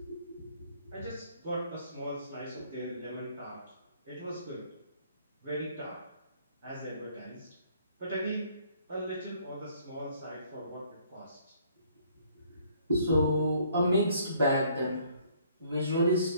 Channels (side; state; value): both; inverted; correlation -0.62